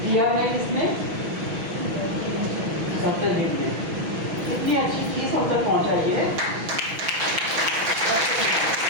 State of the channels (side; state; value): left; late; 6.1 ms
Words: दिया है इसमें डॉक्टर ने इतनी अच्छी चीज़ हम तक पहुँचाई है।